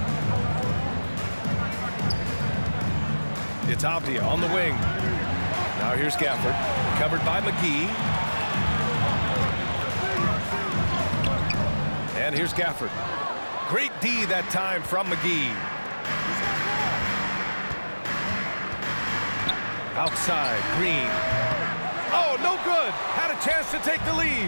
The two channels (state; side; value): inverted; both; correlation -1.00